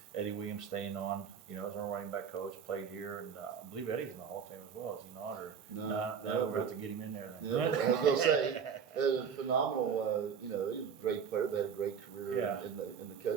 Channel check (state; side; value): quieter; left; 7.0 dB